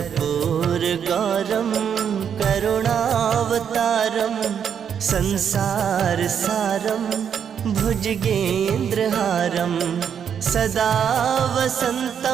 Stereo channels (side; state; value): left; quieter; 7.9 dB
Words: करुणावतारं संसारसारं भुजगेन्द्रहारं सदा